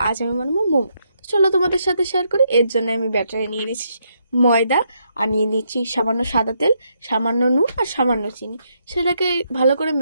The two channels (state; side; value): inverted; both; correlation -0.77